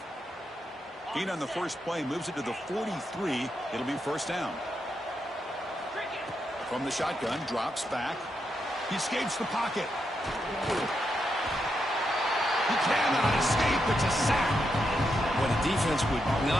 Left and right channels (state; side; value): normal; both; correlation 0.83